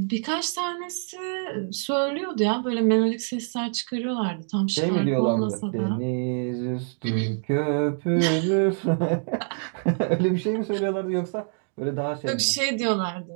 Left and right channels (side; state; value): left; silent; 60 dB below the other